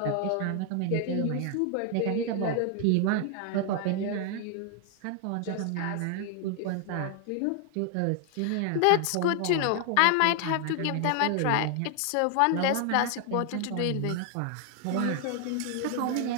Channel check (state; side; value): different; both; correlation 0.00